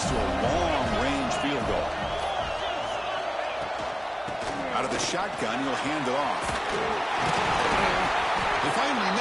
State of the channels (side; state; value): both; identical; correlation 1.00